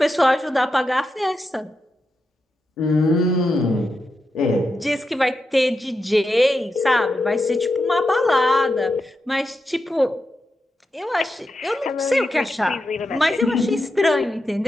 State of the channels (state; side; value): normal; both; correlation 0.87